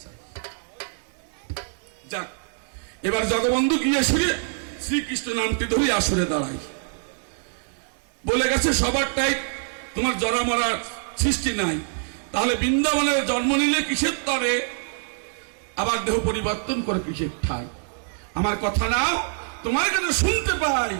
চাই। যাক, এবার জগবন্ধু গিয়ে শুনে শ্রীকৃষ্ণ নামটি ধরে আসরে দাঁড়াই। বলে গেছে সবারটাই তোমার জরা মরার সৃষ্টি নাই, তাহলে বৃন্দাবনের জন্ম নিলে কিসের তরে, আবার দেহ পরিবর্তন করে কিসের ঠাই? আমার কথা নাও, তোমার কথা শুনতে পাই।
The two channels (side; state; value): left; silent; digital silence